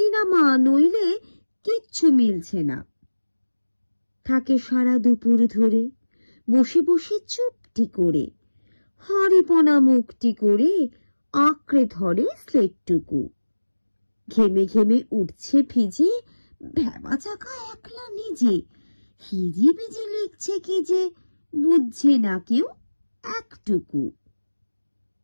নামা, নইলে কিচ্ছু মিলছে না। থাকে সারা দুপুর ধরে বসে বসে চুপটি করে, হাঁড়িপনা মুখটি করে আঁকড়ে ধরে স্লেটটুকু। ঘেমে ঘেমে উঠছে ভিজে, ভেবা চাকা একলা নিজে। হিজি বিজি লিখছে কি যে, বুঝছে না কেউ একটুকু।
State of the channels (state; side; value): inverted; both; correlation -1.00